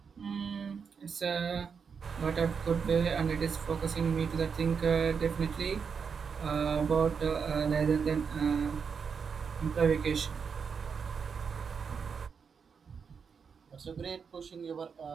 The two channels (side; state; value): left; quieter; 6.1 dB